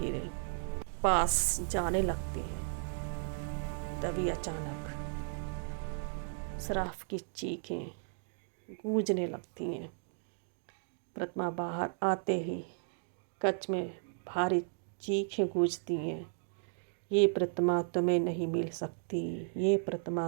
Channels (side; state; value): left; silent; 54 dB below the other